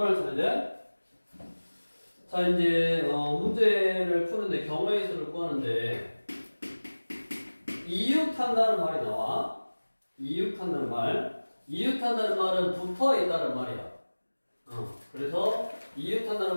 찾는데, 자, 이제, 문제를 푸는데 경우의 수를 구하는데, 이웃한다는 말이 나와. 이웃한다는 말. 이웃한다는 말은 붙어 있다는 말이야. 그래서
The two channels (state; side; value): inverted; both; correlation -1.00